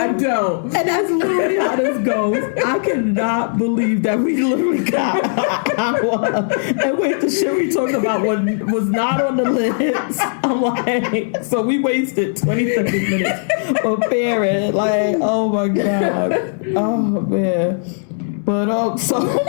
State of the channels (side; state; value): right; silent; 64 dB below the other